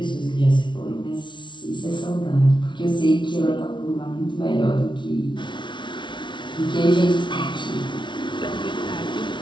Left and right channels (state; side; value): late; right; 0.23 ms